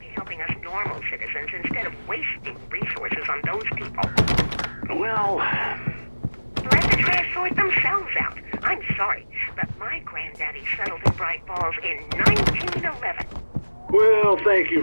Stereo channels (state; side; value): inverted; both; correlation -1.00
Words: be helping us normal citizens instead of wasting resources on those people. Well... Let the trash sort themselves out. I'm sorry, but my granddaddy settled in Bright Falls in 1911. Well, thank you